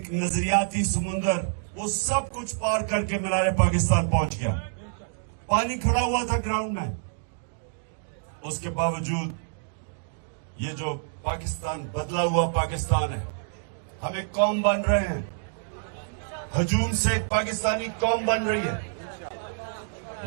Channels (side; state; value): left; silent; digital silence